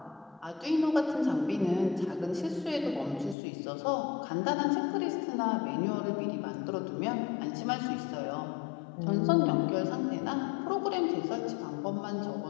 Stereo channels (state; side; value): drops out; right; at 3.4 s